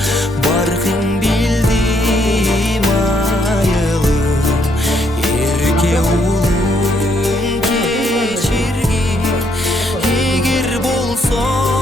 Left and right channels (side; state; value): both; normal; correlation 0.72